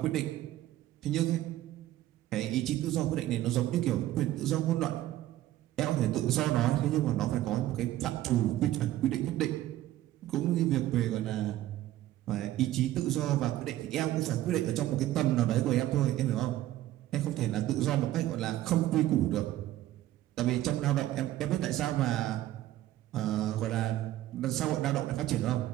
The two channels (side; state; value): left; quieter; 14.3 dB